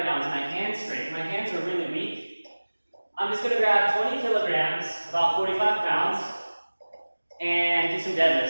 now is my hand strength. My hands are really weak. I'm just gonna grab 20 kilograms, about 45 pounds, and do some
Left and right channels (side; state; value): both; inverted; correlation -1.00